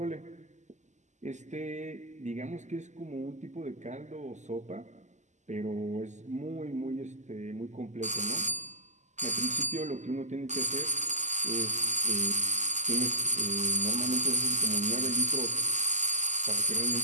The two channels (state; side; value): late; left; 0.34 ms